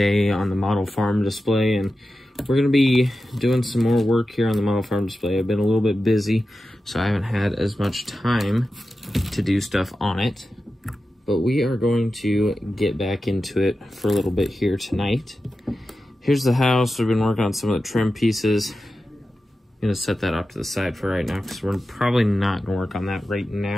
on the model farm display, and we're going to be doing some more work here on the model farm display. I've been a little bit busy, so I haven't had as much time to do stuff on it, but we are going to get back into it for a little bit here tonight. Here's the house. We've been working on some of the trim pieces. I'm going to set that off to the side for right now because we're probably not going to work on that right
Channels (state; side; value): normal; both; correlation 0.92